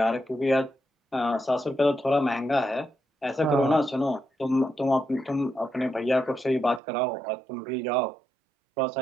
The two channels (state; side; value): drops out; left; at 6.8 s